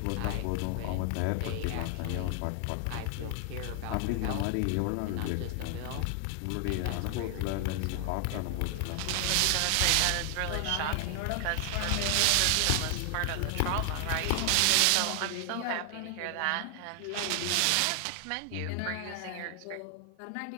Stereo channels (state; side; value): different; both; correlation 0.00